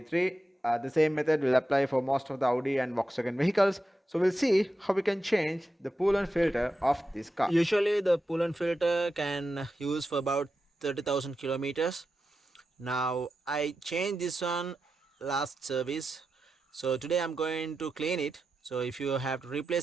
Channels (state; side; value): normal; both; correlation 0.90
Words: The same method will apply for most of the Audi and Volkswagen vehicles. So we'll see how we can change the Pollen filter of this car. Usually the Pollen filter can use for about 30,000 kilometers. Now I changed this one last service, so today I'm going to clean it. So if you have to